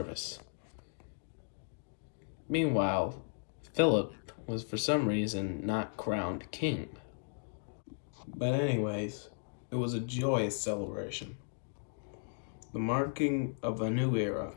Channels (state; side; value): silent; right; digital silence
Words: Meanwhile, Philip was for some reason not crowned king. But anyways, it was a joyous celebration, the marking of a new era,